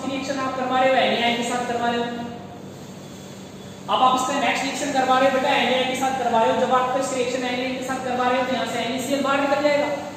रिएक्शन आप करवा रहे हो NaI के साथ करवा रहे हो। अब आप इसका नेक्स्ट रिएक्शन करवा रहे हो बेटा NaI के साथ करवा रहे हो। जब आप इस रिएक्शन NaI के साथ करवा रहे हो तो यहां से NaCl बाहर निकल जाएगा।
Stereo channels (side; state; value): both; identical; correlation 1.00